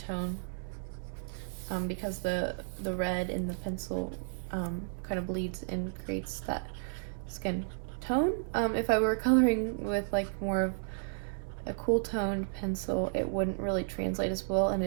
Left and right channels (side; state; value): left; silent; digital silence